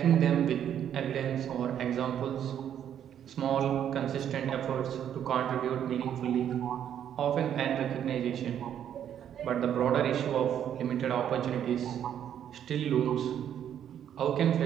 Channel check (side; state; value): left; quieter; 9.7 dB